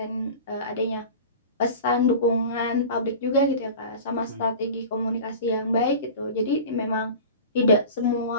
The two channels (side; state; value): both; inverted; correlation -0.35